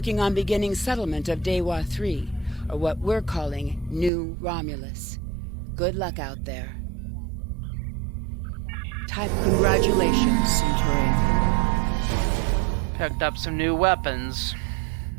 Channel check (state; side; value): drops out; left; at 4.1 s